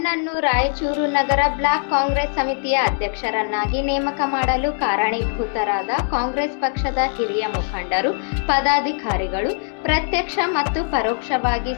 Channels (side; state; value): right; silent; 65 dB below the other